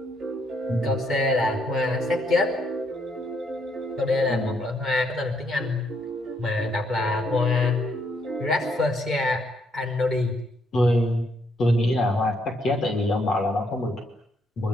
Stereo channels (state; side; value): normal; both; correlation 0.73